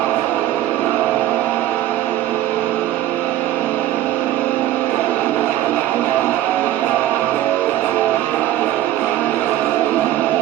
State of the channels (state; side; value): quieter; left; 13.6 dB